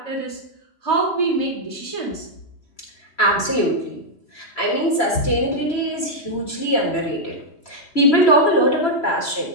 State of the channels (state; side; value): late; right; 3.0 ms